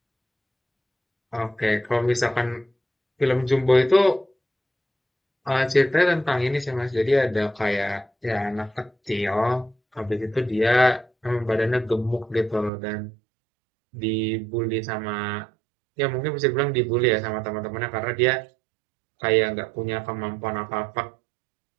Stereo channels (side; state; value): left; drops out; at 12.7 s